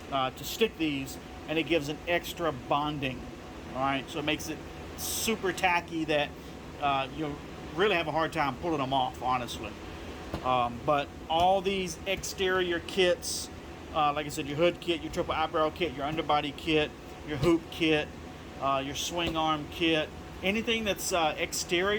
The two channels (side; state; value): both; identical; correlation 1.00